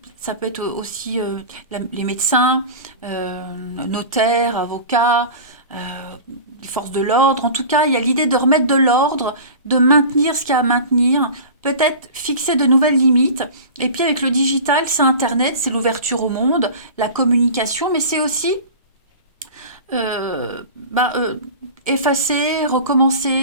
ça peut être aussi les médecins, notaires, avocats, les forces de l'ordre. En tout cas, il y a l'idée de remettre de l'ordre, de maintenir ce qu'il y a à maintenir, peut-être fixer de nouvelles limites. Et puis avec le digital, c'est Internet, c'est l'ouverture au monde, la communication, mais c'est aussi euh, bah, euh, effacer,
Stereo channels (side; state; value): both; inverted; correlation -0.35